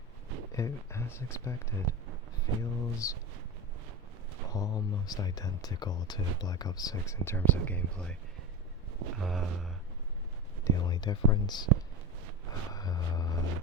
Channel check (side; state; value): both; normal; correlation 0.23